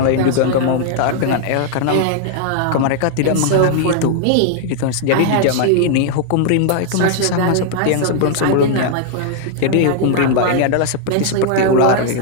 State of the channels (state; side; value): different; both; correlation 0.00